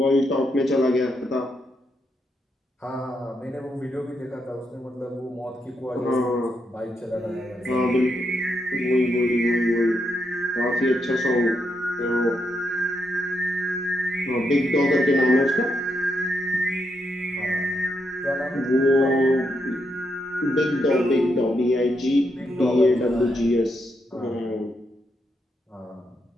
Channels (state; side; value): normal; both; correlation 0.81